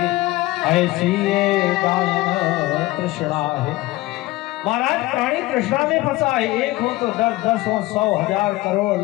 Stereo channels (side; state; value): right; quieter; 18.9 dB